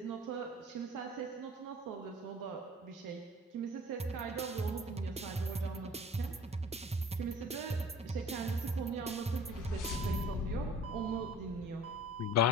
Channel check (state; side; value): normal; both; correlation 0.46